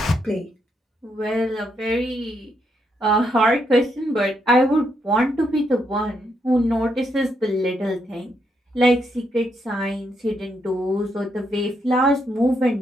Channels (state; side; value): normal; both; correlation 0.78